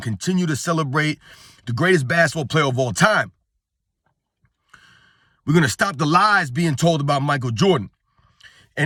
to celebrate the greatest basketball player of all time. We're going to stop the lies being told about Michael Jordan.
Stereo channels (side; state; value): both; identical; correlation 1.00